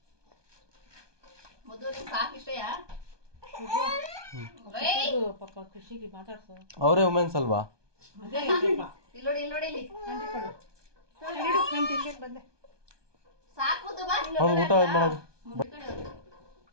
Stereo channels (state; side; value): late; left; 1.2 ms